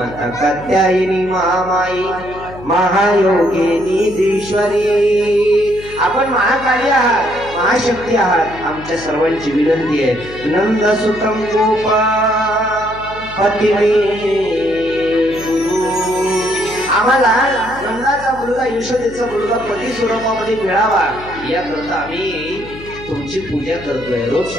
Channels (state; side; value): noise; left; hum, 16 dB below the sound